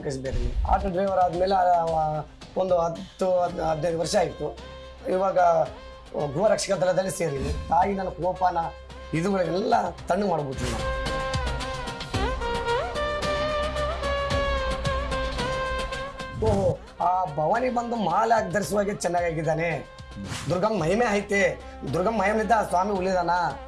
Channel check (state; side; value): identical; both; correlation 1.00